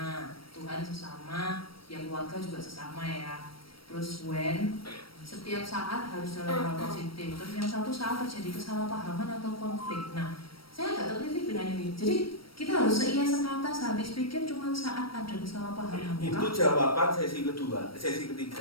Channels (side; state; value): right; late; 0.75 ms